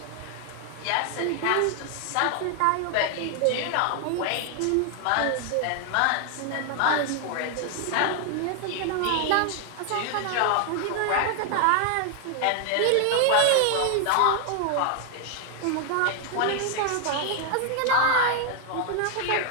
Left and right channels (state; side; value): different; both; correlation 0.00